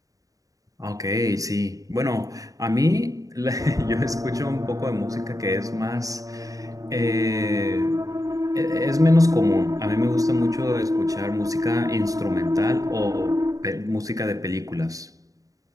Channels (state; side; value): late; left; 0.17 ms